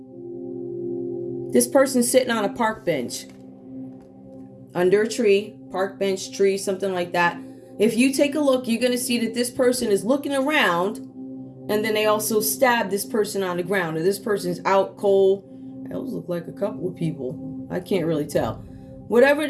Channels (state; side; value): identical; both; correlation 1.00